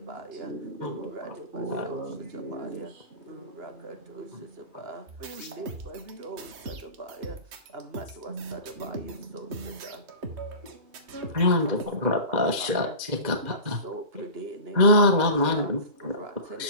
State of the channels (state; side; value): late; left; 2.1 ms